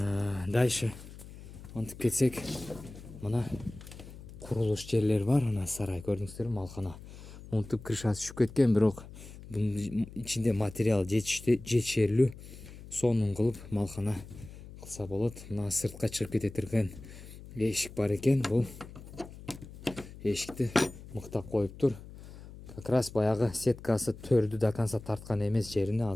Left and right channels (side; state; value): left; noise; hum, 16 dB below the sound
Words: Дальше монтуп кетсек, мына курулуш жерлер бар. Мына сарай көрдүңүздөрбү, малкана. Монтуп крышасы түшүп кеткен, бирок бунун ичинде материал жетишерлүү. Сонун кылып малкана кылса болот. Мына сыртка чыгып кете турган эшик бар экен. Бул эшикти мыктап коюптур. Как раз баягы сеткасы төрдү до конца тарткан эмес жерине